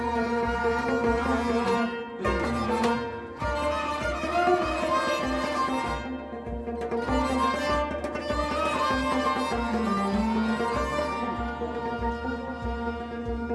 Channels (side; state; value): both; identical; correlation 1.00